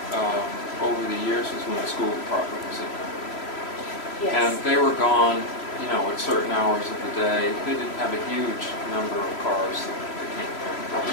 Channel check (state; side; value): late; right; 3.0 ms